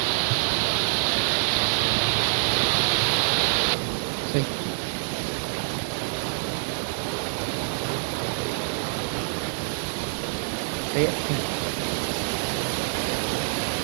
See? See it?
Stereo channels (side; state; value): left; silent; digital silence